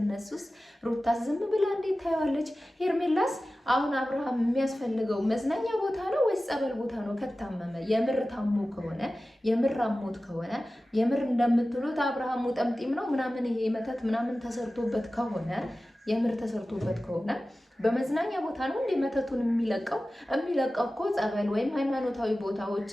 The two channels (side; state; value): both; normal; correlation 0.95